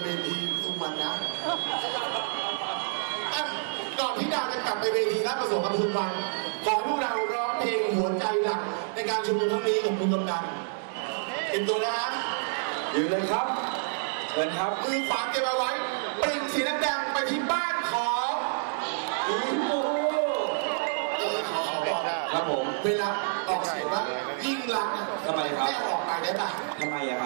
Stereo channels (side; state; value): left; silent; 59 dB below the other